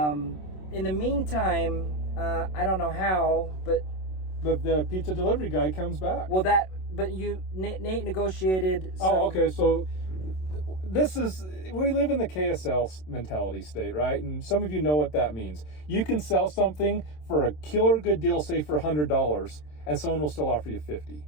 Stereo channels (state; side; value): late; right; 27 ms